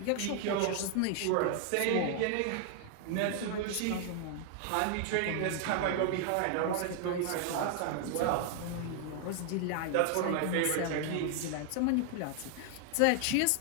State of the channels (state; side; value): different; both; correlation 0.00